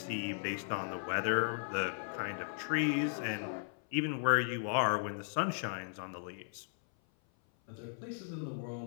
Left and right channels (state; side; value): silent; right; 54 dB below the other